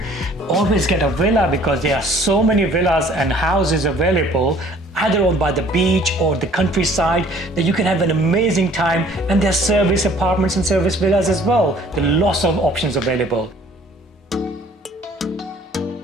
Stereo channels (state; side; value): normal; both; correlation 0.55